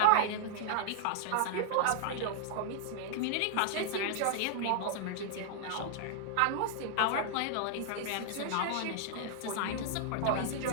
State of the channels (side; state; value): both; different; correlation -0.01